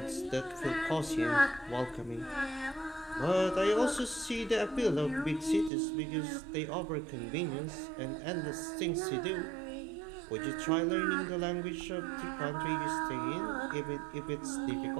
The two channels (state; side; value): drops out; left; at 5.7 s